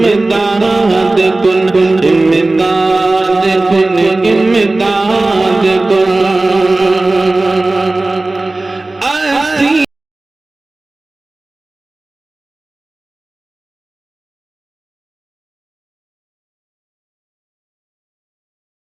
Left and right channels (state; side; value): quieter; left; 3.0 dB